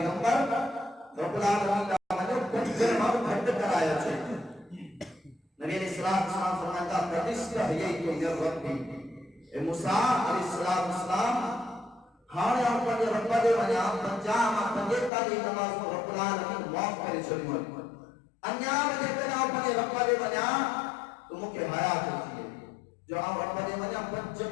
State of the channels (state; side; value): drops out; right; at 15.1 s